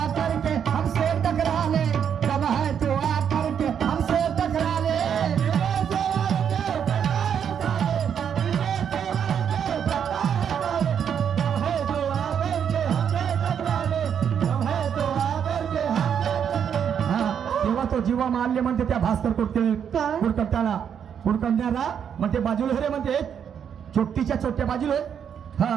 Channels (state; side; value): quieter; left; 8.1 dB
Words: जीवा मारले म्हणते त्या भास्कर कुडकट्याला कुडकट्याला म्हणते बाजूला रे म्हणते चोट्टीच्या चोट्या बाजूला